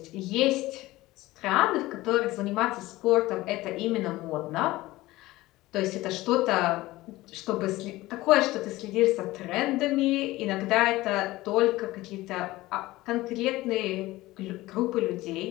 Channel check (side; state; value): right; quieter; 18.3 dB